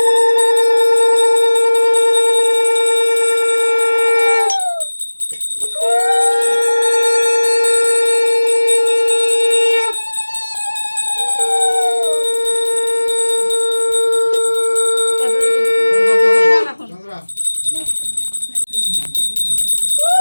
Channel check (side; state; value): both; inverted; correlation -1.00